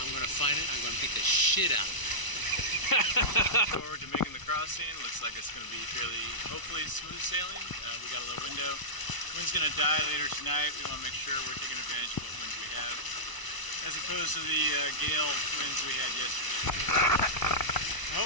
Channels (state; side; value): late; right; 1.0 ms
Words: gonna find it. I'm gonna beat the shit out of it. Forward to making the crossing. Looks like it's going to be fairly, hopefully, smooth sailing. We got a little window. Wind's going to die later tonight. We want to make sure we're taking advantage of what winds we have, as opposed to the gale winds we had yesterday.